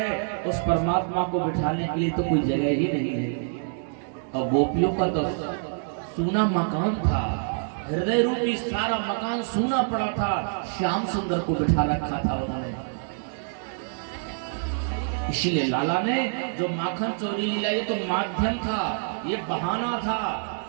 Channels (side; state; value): left; silent; digital silence